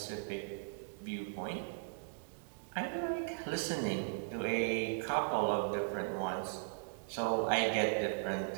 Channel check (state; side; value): silent; left; digital silence